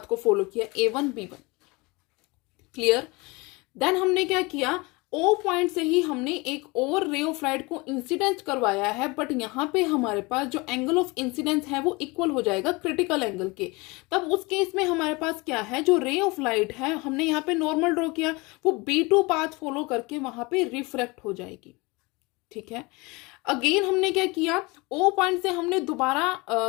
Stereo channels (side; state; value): right; quieter; 25.3 dB